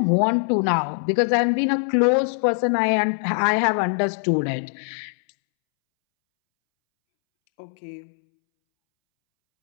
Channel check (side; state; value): right; silent; 64 dB below the other